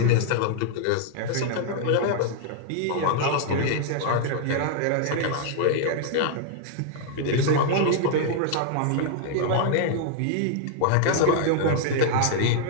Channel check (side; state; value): both; different; correlation -0.01